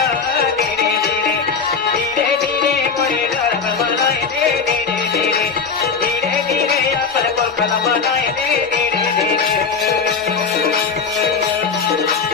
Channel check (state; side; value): quieter; right; 5.4 dB